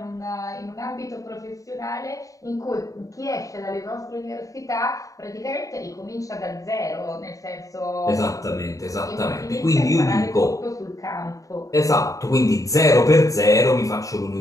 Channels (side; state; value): right; late; 0.16 ms